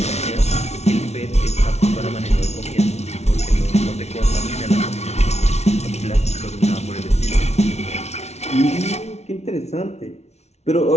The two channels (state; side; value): late; right; 0.31 ms